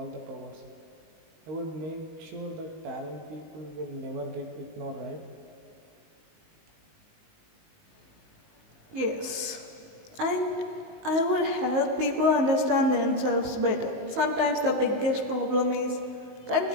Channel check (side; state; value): left; late; 19 ms